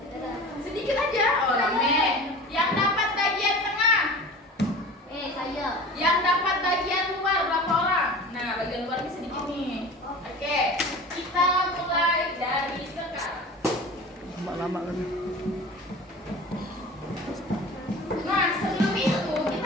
Sedikit aja. Oh, rame. Yang dapat bagian tengah? Saya. Yang dapat bagian luar berapa orang? Nah, bagian luar ini sedikit nih. Oke, kita mulai dari sekarang. Lama kan. Nah, sebelum itu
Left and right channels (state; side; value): normal; both; correlation 0.38